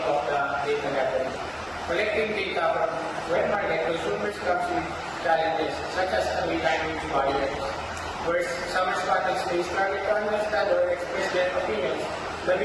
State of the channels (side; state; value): both; identical; correlation 1.00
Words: of the data gathering? Collecting data from wet market consumers comes with challenges such as language barriers, where some respondents may struggle to understand or express their opinions. The